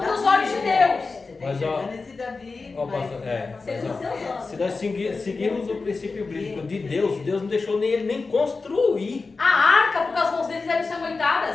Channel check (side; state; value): right; quieter; 4.1 dB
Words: os olhos de Deus. Você tá Mas, ó, enxergando esse Davi. Ó, mas- pastor, mas, Segundo ó, seus olhos. se nós seguirmos o princípio bíblico de Deus, Deus não deixou nem ele nem construir. A arca, porque as mãos deles eram